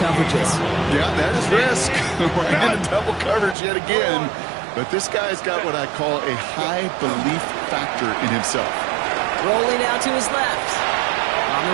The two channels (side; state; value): left; drops out; at 3.6 s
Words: Yeah, that is risk. We're in a double coverage yet again. But this guy's got what I call a high belief factor in himself. Rolling out to his left. On